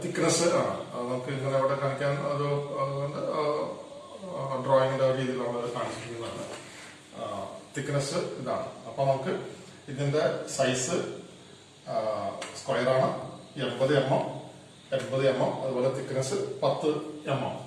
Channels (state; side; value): identical; both; correlation 1.00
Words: തിക്നെസ് ആണ്. നമുക്ക് ഇങ്ങനെ അവിടെ കാണിക്കാൻ ഒരു ഡ്രോയിങ്ങിന്റെ രീതിയിൽ നമ്മൾ കാണിച്ചിരിക്കുന്നതാണ്. തിക്നെസ് ഇതാണ്. അപ്പൊ നമുക്ക് ഇതിന്റെ സൈസ് സ്ക്വയർ ആണ്, 80 mm. 80 mm, അതുപോലെ തിക്നെസ് 10 mm.